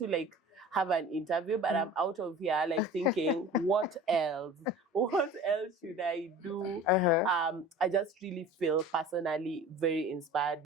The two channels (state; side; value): normal; both; correlation 0.40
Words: like have an interview, but I'm out of here like thinking, what else? What else should I do? I just really feel personally very inspired